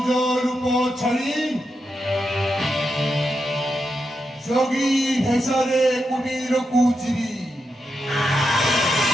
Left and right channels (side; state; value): both; normal; correlation 0.86